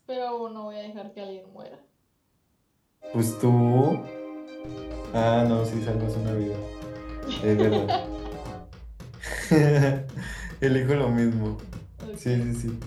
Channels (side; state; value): both; identical; correlation 1.00